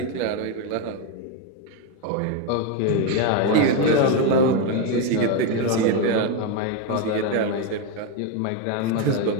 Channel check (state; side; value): different; both; correlation 0.02